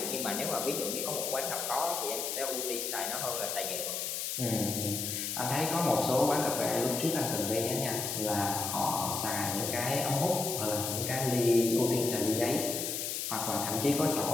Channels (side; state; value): left; noise; hiss, 2 dB below the sound